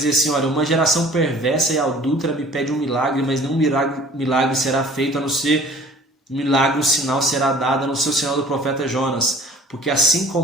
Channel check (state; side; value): normal; both; correlation 0.48